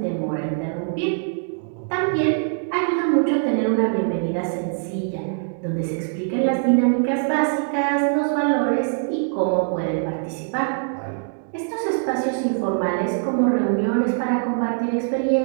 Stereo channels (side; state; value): left; silent; digital silence